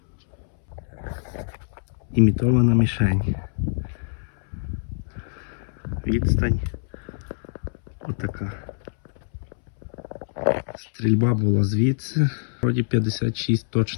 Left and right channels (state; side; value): silent; right; 62 dB below the other